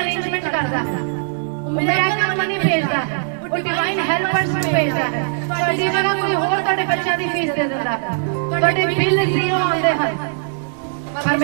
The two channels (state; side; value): silent; left; digital silence